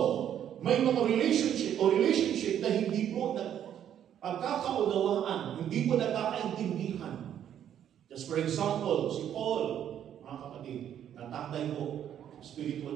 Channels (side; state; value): left; quieter; 10.0 dB